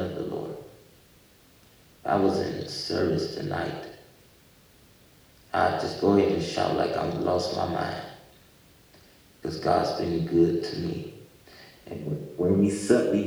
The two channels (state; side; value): identical; both; correlation 1.00